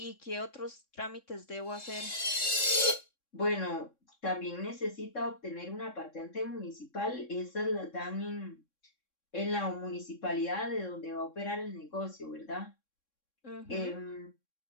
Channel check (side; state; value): right; late; 3.6 ms